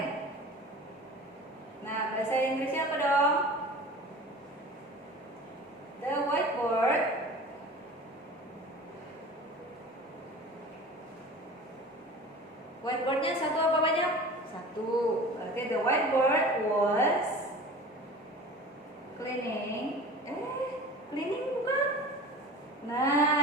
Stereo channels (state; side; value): normal; both; correlation 0.38